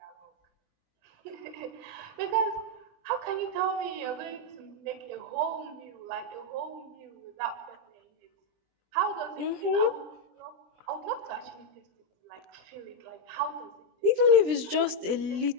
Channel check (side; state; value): left; late; 20 ms